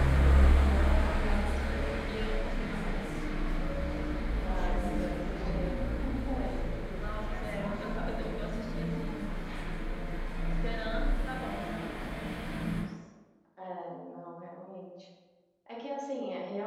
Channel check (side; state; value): both; identical; correlation 1.00